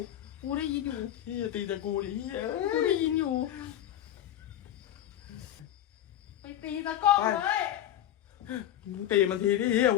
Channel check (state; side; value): quieter; right; 11.9 dB